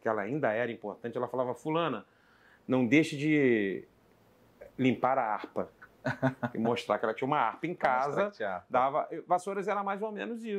ela ainda era importante, ela falava: fulana, não deixe de limpar a harpa. E mostrar que ela tinha uma harpa em casa. Vassouras era mais ou menos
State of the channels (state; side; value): identical; both; correlation 1.00